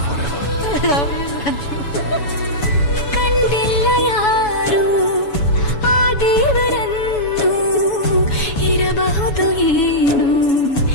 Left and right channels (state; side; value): late; right; 7.0 ms